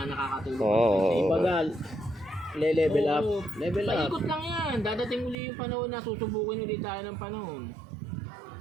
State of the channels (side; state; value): left; drops out; at 5.4 s